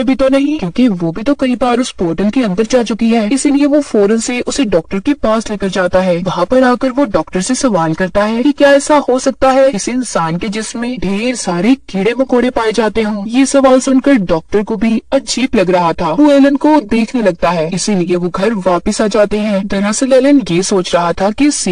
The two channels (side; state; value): both; identical; correlation 1.00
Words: भी तो नहीं, क्योंकि वो भी तो कई बार उस पोर्टल के अंदर जा चुकी है। इसीलिए वो फौरन से उसे डॉक्टर के पास लेकर जाता है। वहाँ पर आकर वो डॉक्टर से सवाल करता है कि क्या ऐसा हो सकता है इस इंसान के जिस्म में ढेर सारे कीड़े मकोड़े पाए जाते हों। ये सवाल सुनकर डॉक्टर को भी अजीब लग रहा था। वो एलन को देखने लगता है, इसीलिए वो घर वापस आ जाते हैं। दरअसल एलन ये सोच रहा था कि